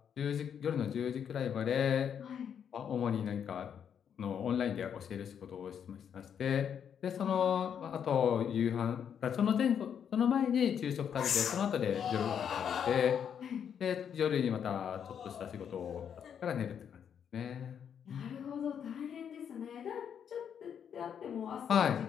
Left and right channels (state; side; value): quieter; right; 8.1 dB